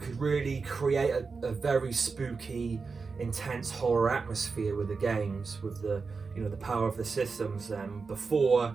could really create a very spooky, intense horror atmosphere with the games, with the the power of the systems. Before,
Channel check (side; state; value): left; quieter; 4.7 dB